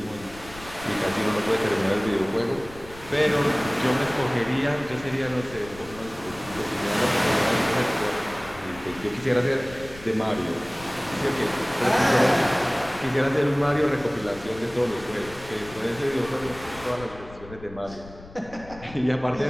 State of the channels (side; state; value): left; noise; rumble, 18 dB below the sound